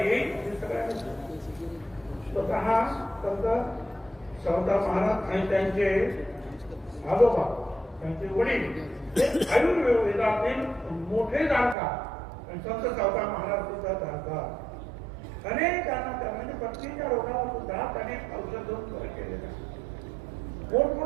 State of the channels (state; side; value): drops out; left; at 11.8 s